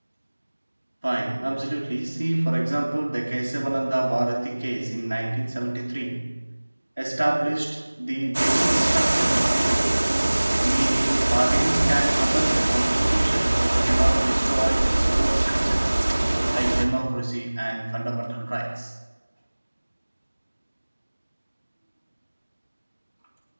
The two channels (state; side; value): inverted; both; correlation -1.00